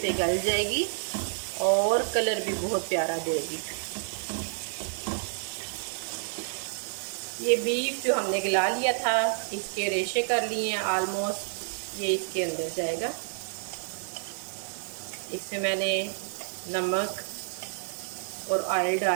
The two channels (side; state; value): left; silent; 58 dB below the other